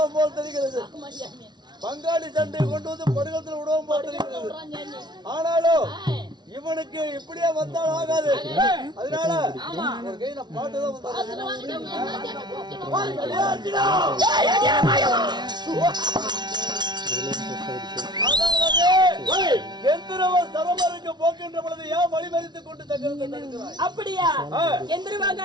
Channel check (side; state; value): left; late; 0.20 ms